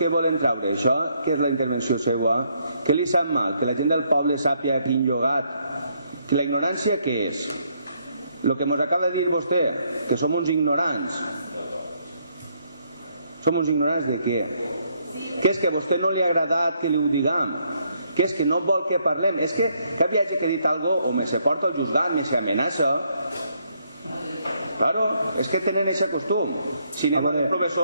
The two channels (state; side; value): inverted; both; correlation -0.72